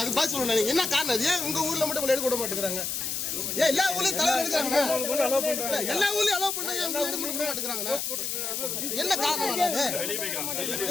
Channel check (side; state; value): left; noise; hiss, 2 dB below the sound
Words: அது பாஸ் சொல்லணும். என்ன காரணம்? ஏன் உங்க ஊர்ல மட்டும் எடுக்க விட மாட்டேங்கிறாங்க? ஏன் எல்லா ஊர்லயும் தலைவர் எடுக்கிறாங்க? எல்லா ஊர்லயும் அலோவ் பண்ணாங்க, உங்க எடுக்க விட மாட்டேங்கிறாங்க. என்ன காரணம்?